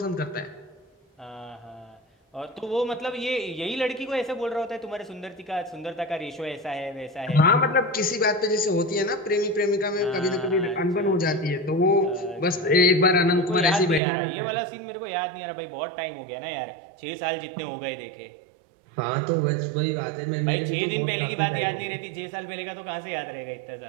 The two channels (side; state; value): left; drops out; at 14.0 s